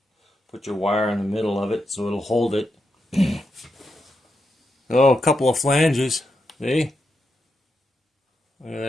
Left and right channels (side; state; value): both; normal; correlation 0.85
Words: Put your wire in the middle of it so it'll hold it. Oh, a couple of flanges. See? Look at